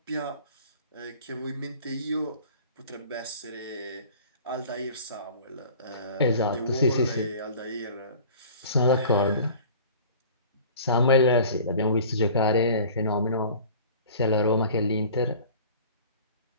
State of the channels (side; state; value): both; inverted; correlation -0.44